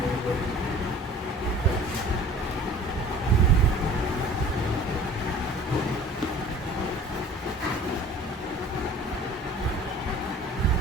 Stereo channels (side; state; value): both; normal; correlation 0.46